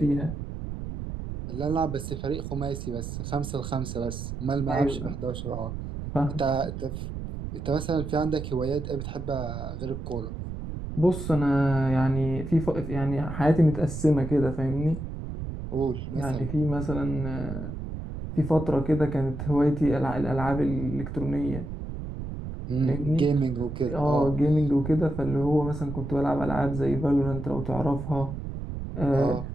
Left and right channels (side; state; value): right; noise; rumble, 7 dB below the sound